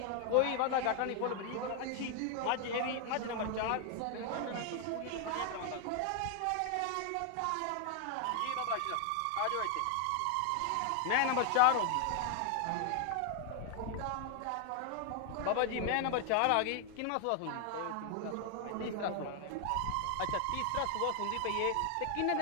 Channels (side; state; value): both; different; correlation 0.00